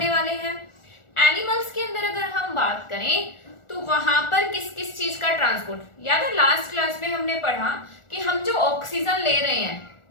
वाले हैं। एनिमल्स के अंदर अगर हम बात करें तो वहां पर किस किस चीज का ट्रांसपोर्ट, याद है लास्ट क्लास में हमने पढ़ा कि हम जो ऑक्सीजन ले रहे हैं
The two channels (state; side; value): late; right; 1.4 ms